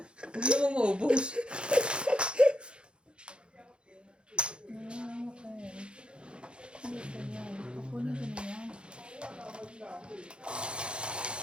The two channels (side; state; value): left; late; 0.055 ms